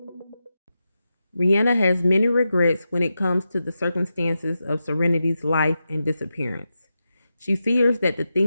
Rihanna has many regrets when it comes to the circumstances of Serenity's life and disappearance. She fears that the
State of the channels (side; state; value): both; inverted; correlation -0.90